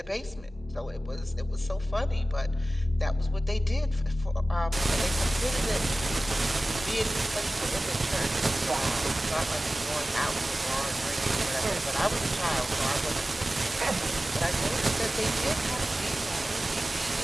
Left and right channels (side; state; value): both; normal; correlation 0.96